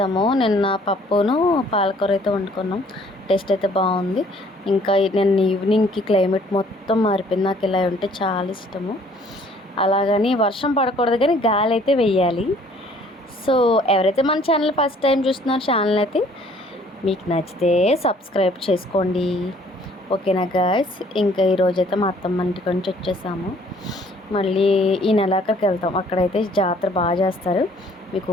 నిన్న పప్పును పాలకూర అయితే వండుకున్నాం. టేస్ట్ అయితే బాగుంది. ఇంకా నేను ఈవినింగ్కి క్లైమేట్ మొత్తం మారిపోయింది. నాకు ఇలా ఉంటే చాలా ఇష్టము. అలాగని వర్షం పడకూడదు కానీ గాలి అయితే వెయ్యాలి. సో ఎవరైతే మన ఛానల్ ఫస్ట్ టైం చూస్తున్నారో ఛానల్ అయితే మీకు నచ్చితే సబ్స్క్రైబ్ చేసుకోండి, ఓకేనా గాయస్. ఇంకా ఈరోజైతే మా అత్తమ్మ ఇంటికి నుంచి వచ్చేసాము. మళ్ళీ ఈ నెలాఖరికి వెళ్తాం. అక్కడైతే జాతర బాగా చేస్తారు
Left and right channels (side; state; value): both; normal; correlation 0.58